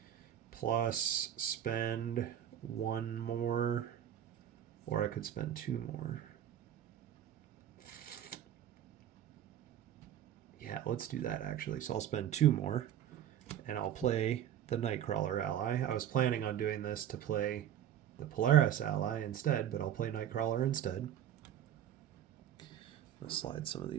plus spend 1 more, or I could spend 2 more. Yeah, let's do that actually. So I'll spend 2 more and I'll play the Nightcrawler ally. I was planning on doing this to play the Polaris ally instead, but I'll play Nightcrawler instead. I'll slide some of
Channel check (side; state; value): left; quieter; 10.5 dB